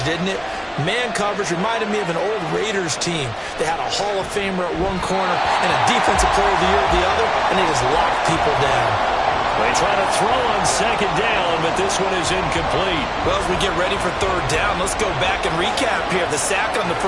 didn't it? Man coverage reminded me of an old Raiders team. They had a Hall of Famer at one corner and a Defensive Player of the Year at the other, and they just locked people down. They try to throw on 2nd down, but this one is incomplete. Well, as we get ready for 3rd down, let's go back and recap here. The sack on the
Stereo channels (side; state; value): both; identical; correlation 1.00